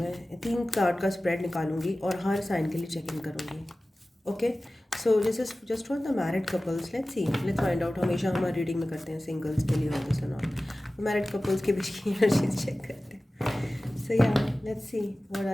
3 कार्ड का स्प्रेड निकालूंगी और हर साइन के लिए चेक इन करूँगी। Okay, so this is just for the married couples. Let's find out. हमेशा हमारी रीडिंग में करते हैं सिंगल्स के लिए और दिस नॉट, मैरिड कपल्स के बीच की एनर्जीज चेक करते हैं। So yeah, let's see what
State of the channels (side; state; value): both; normal; correlation 0.96